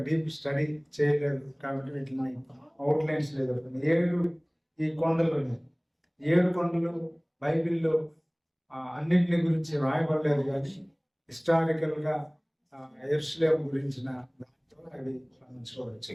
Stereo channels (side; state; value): both; identical; correlation 1.00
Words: డీప్ స్టడీ చేయలేదు కాబట్టి వీటిని అవుట్లైన్స్ లేదు. 7 ఈ కొండలు ఉన్నాయి. 7 కొండలు బైబిల్లో అన్నింటిని గురించి రాయబడలేదు, కానీ హిస్టారికల్గా యెరూషలేము గురించిన దాంతో అవి మనం చూడవచ్చు.